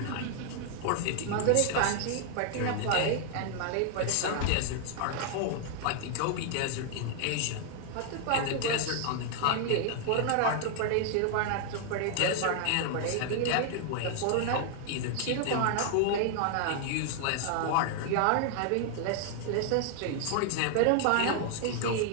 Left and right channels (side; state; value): both; different; correlation 0.00